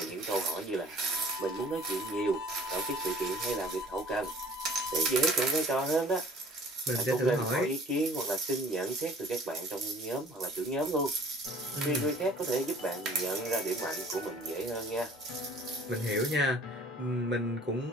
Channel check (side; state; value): both; normal; correlation 0.51